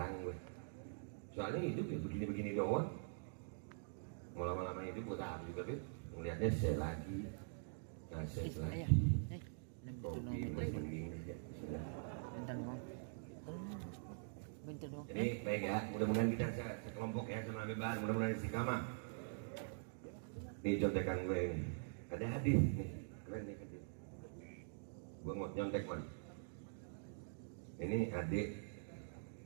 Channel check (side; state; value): left; silent; digital silence